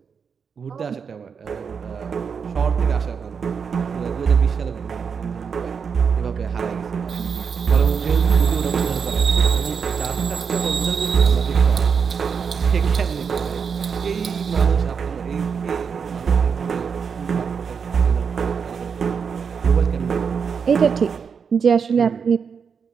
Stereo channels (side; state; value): left; quieter; 6.3 dB